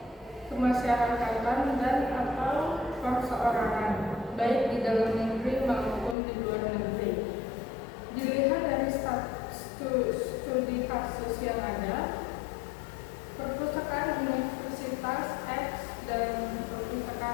kemasyarakatan dan atau perseorangan, baik di dalam negeri maupun di luar negeri. Dilihat dari studi kasus yang ada, perpustakaan Universitas X dan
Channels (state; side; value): drops out; right; at 6.2 s